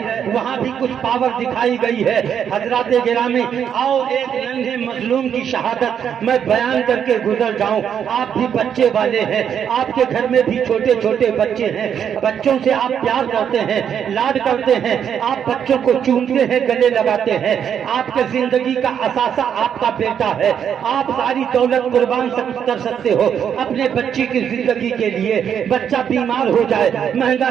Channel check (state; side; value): quieter; left; 8.3 dB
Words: وہاں بھی کچھ پاور دکھائی گئی ہے۔ حضرات گرامی، آؤ ایک ننھے مظلوم کی شہادت میں بیان کر کے گزر جاؤں۔ آپ بھی بچے والے ہیں، آپ کے گھر میں بھی چھوٹے چھوٹے بچے ہیں، بچوں سے آپ پیار کرتے ہیں، لاڈ کرتے ہیں، آپ بچوں کو چومتے ہیں، گلے لگاتے ہیں۔ آپ کے زندگی کا اثاثہ آپ کا بیٹا ہے، آپ ساری دولت قربان کر سکتے ہو اپنے بچے کی زندگی کے لیے۔ بچہ بیمار ہو جائے، مہنگا